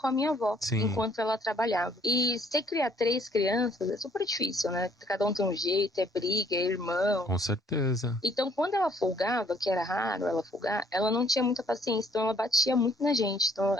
a minha avó, Sim. enquanto ela trabalhava. E você criar 3 crianças é super difícil, né? Cada um tem um jeito, é briga, é irmão. Com certeza. Então, quando ela folgava, que era raro ela folgar, ela não tinha muita paciência, então ela batia muito na gente. Então,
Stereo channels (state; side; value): normal; both; correlation 0.63